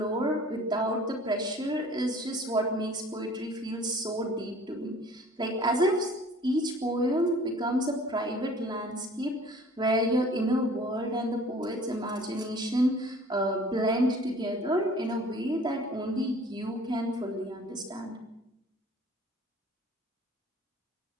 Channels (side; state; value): both; normal; correlation 0.50